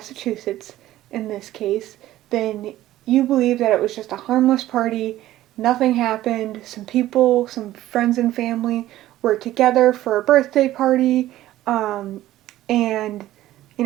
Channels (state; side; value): quieter; left; 14.6 dB